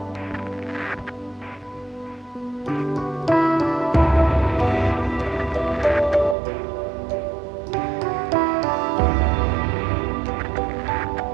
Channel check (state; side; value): drops out; left; at 6.4 s